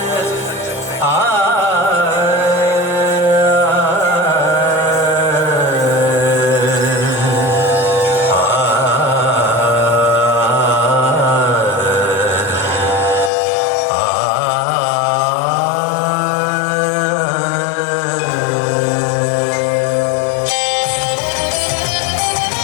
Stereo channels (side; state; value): right; drops out; at 13.3 s